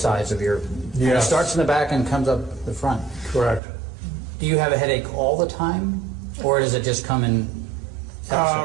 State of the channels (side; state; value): left; drops out; at 3.6 s